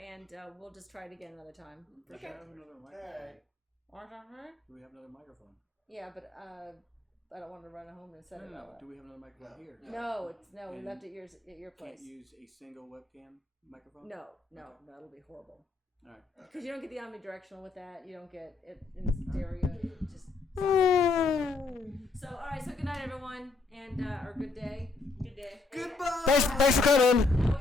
we'll just try it again another time. Do we have another microphone? Do we have another microphone? Yeah, but I don't want to run home and set it all up. Do we have another microphone here? No, we And left it at your place. Can't use a single webcam microphone? No, that'll be horrible. All right. Because you don't get the omnidirectional with that. You don't get it in stereo. It just so, all right. So, good night, everyone, and or good day. Good day. Goodbye. Thanks for coming. Now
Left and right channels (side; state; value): right; quieter; 3.9 dB